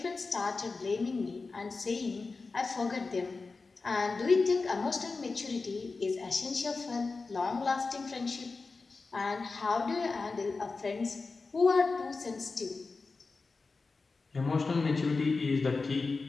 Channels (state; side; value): quieter; right; 4.0 dB